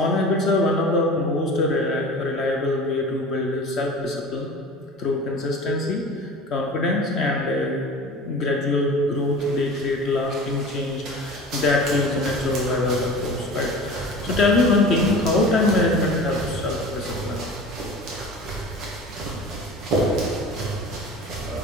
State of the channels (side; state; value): both; normal; correlation 0.38